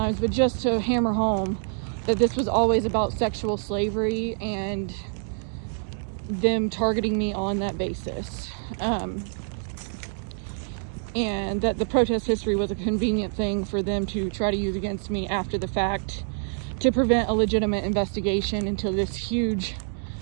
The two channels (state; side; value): silent; left; 61 dB below the other